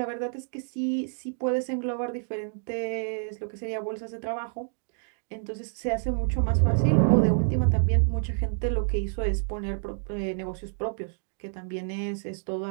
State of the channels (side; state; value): left; silent; digital silence